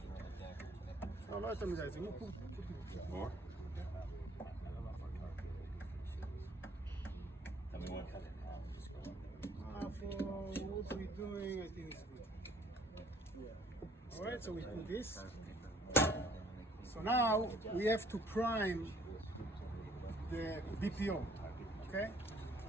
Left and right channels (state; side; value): normal; both; correlation 0.60